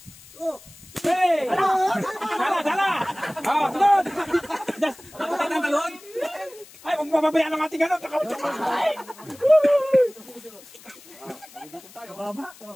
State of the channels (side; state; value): left; noise; hiss, 22 dB below the sound